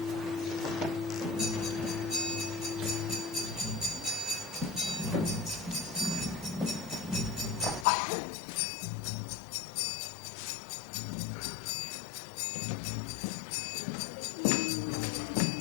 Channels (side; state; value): right; drops out; at 7.9 s